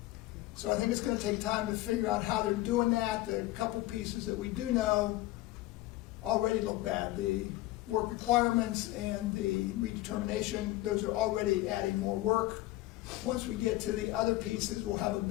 So I think it's going to take time to figure out how they're doing that. The couple pieces that we do know already look bad. The work requirements and the redetermination, those are already adding more work. Once we get to the other pieces, we'll have a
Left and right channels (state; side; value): quieter; right; 17.5 dB